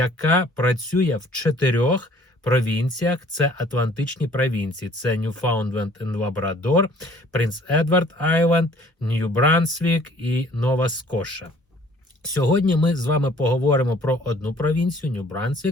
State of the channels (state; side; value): normal; both; correlation 0.55